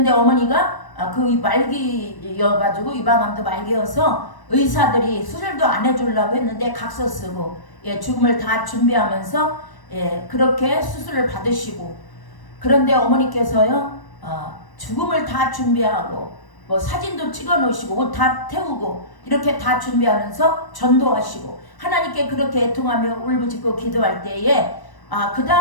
어머니가 그 말기여가지고 유방암도 말기여서 의사들이 수술도 안 해주려고 했는데 각서 쓰고 죽음을 다 준비하면서 그렇게 수술을 받으시고, 그런데 어머니께서요, 죽음을 다 준비하고 뭐 사진도 찍어 놓으시고 옷 다 태우고 이렇게 다 준비하면서 전도하시고 하나님께 그렇게 애통하며 울부짖고 기도할 때에 그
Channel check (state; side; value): late; right; 1.0 ms